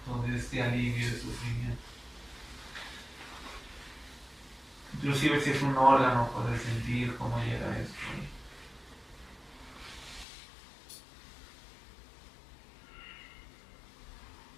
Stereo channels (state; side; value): drops out; right; at 10.2 s